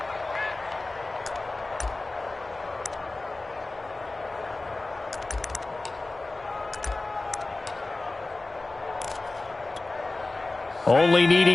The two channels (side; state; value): right; quieter; 3.2 dB